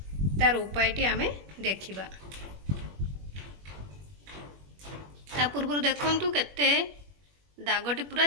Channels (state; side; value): late; left; 21 ms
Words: तार उपायटी आम देखा। ता पूर्व देखंतु केते दागटी पूरा